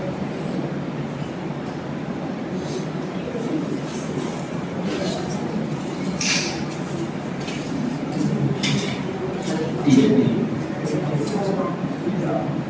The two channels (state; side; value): identical; both; correlation 1.00